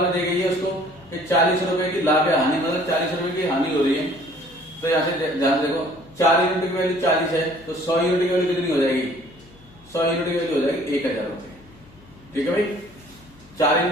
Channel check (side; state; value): left; noise; hum, 25 dB below the sound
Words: दी गई है उसको कि 40 रुपए की लाभ या हानि, मतलब 40 रुपए की हानि हो रही है। तो यहाँ से ध्यान देखो, 4 यूनिट की वैल्यू 40 है, तो 100 यूनिट की वैल्यू कितनी हो जाएगी? 100 यूनिट की वैल्यू हो जाएगी 1000 रुपए। ठीक है भाई, 4